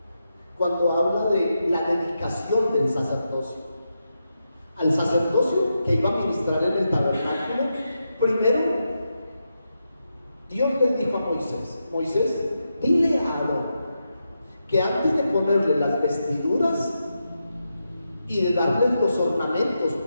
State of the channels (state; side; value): inverted; both; correlation -0.87